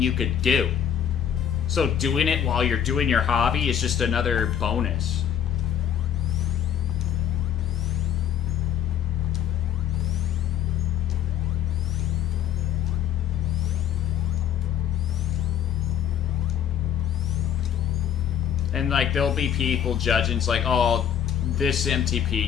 you could do. So doing it while you're doing your hobby is just another bonus. And like there'll be people judging, it's like, oh, this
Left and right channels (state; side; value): quieter; right; 9.3 dB